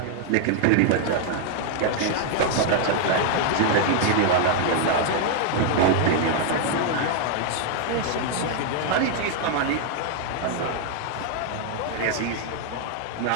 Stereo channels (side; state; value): both; different; correlation 0.00